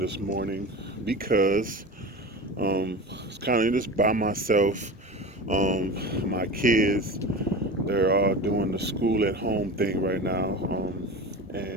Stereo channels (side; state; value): both; normal; correlation 0.31